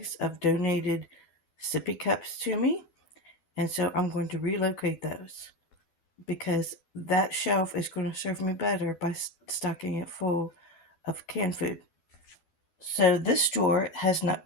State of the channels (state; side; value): late; right; 12 ms